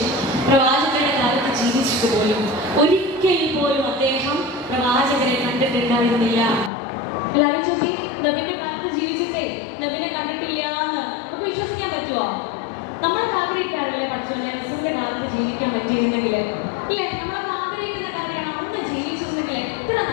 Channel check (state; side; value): drops out; right; at 6.7 s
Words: പ്രവാചകരുടെ കാലത്ത് ജീവിച്ചിട്ട് പോലും ഒരിക്കൽ പോലും അദ്ദേഹം പ്രവാചകരെ കണ്ടിട്ടുണ്ടായിരുന്നില്ല. ആലോചിച്ചോക്കി, നബിന്റെ കാലത്ത് ജീവിച്ചിട്ടേ നബിനെ കണ്ടിട്ടില്ല എന്ന് നമുക്ക് വിശ്വസിക്കാൻ പറ്റുമോ? നമ്മളൊക്കെ ആഗ്രഹിക്കാറില്ലേ പഠിച്ചോല്ലേ റസൂലിന്റെ കാലത്ത് ജീവിക്കാൻ പറ്റിയിരുന്നെങ്കിൽ ഇല്ലേ? നമ്മളൊക്കെ ആഗ്രഹിക്കുന്ന കാര്യമാണ്, അന്ന് ജീവിച്ചിരുന്നെങ്കിൽ എത്ര